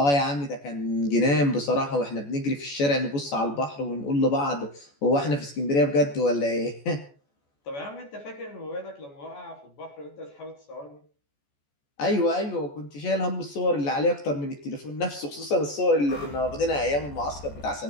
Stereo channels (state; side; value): late; right; 14 ms